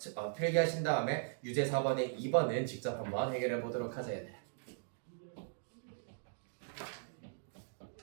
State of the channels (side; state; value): left; silent; digital silence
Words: 필기하신 다음에 유제 4번에 2번은 직접 한번 해결해 보도록 하자 얘들.